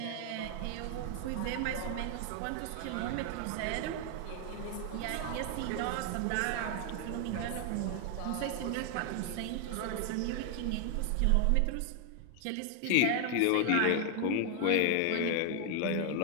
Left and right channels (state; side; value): different; both; correlation 0.00